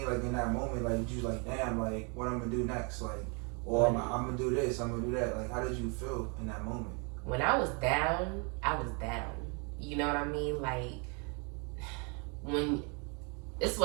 Like in that moment, like you like, damn, like what I'm gonna do next? Like, or I'm gonna do this, I'm gonna do that. Like, how did you feel in that moment? When I was down, I was down. You know what I mean? Like, this is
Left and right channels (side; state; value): left; quieter; 34.3 dB